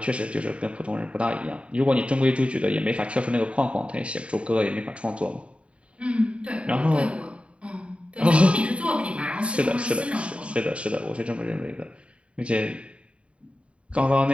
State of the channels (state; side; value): late; left; 0.060 ms